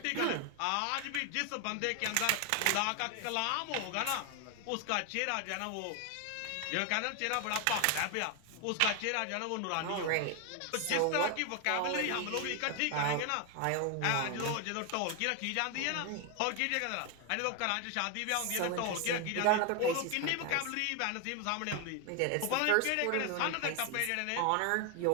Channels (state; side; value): different; both; correlation 0.01